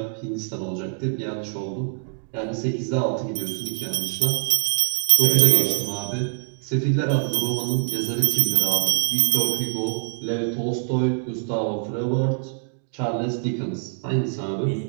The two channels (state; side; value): silent; left; digital silence